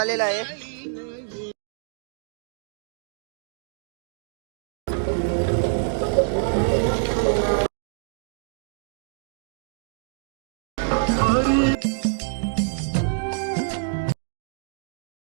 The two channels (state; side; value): silent; left; digital silence